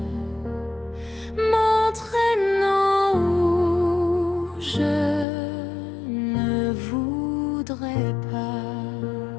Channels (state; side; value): drops out; right; at 5.2 s